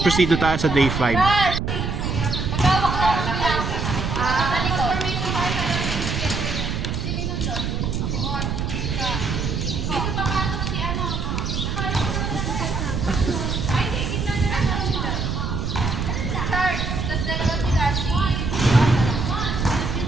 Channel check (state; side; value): noise; right; rumble, 2 dB below the sound